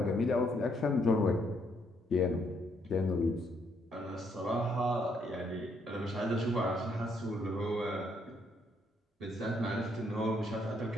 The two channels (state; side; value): normal; both; correlation 0.71